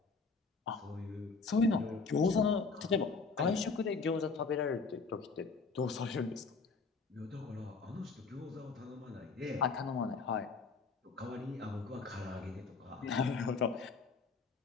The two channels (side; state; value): right; quieter; 4.5 dB